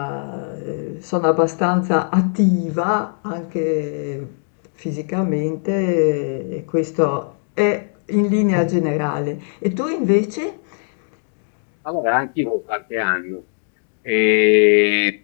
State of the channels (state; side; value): silent; right; 65 dB below the other